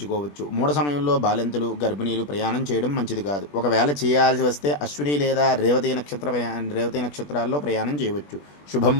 మూఢ సమయంలో బాలింతలు, గర్భిణీలు ప్రయాణం చేయడం మంచిది కాదు. ఒకవేళ చేయాల్సి వస్తే అశ్విని లేదా రేవతి నక్షత్రాల్లో ప్రయాణం చేయవచ్చు. శుభం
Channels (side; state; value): right; late; 20 ms